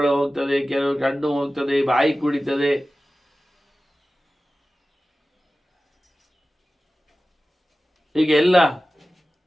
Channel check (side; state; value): both; normal; correlation 0.96